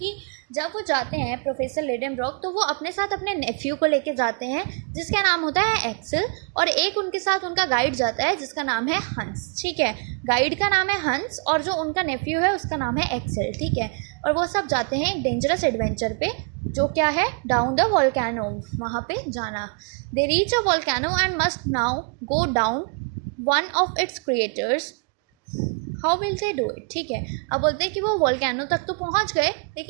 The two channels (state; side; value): quieter; left; 37.8 dB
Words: जब वो जाते हैं प्रोफेसर लिडेनब्रॉक तो वो अपने साथ अपने नेफ्यू को लेके जाते हैं जिसका नाम होता है एक्सेल, और एक उनके साथ उनका गाइड जाता है जिसका नाम है हंस। ठीक है, गाइड का नाम है हंस और जो उनका नेफ्यू है उसका नाम है एक्सेल। ठीक है, और वो सब जाते हैं एक डेंजरस एडवेंचर पे जो क्या है, डाउन द वोल्केनो, वहाँ पे जाना। They reach a volcano and must now go down one of its creators, how will they do it. ठीक है, अब बोलते हैं कि वो वोल्केनो तक तो पहुंच गए,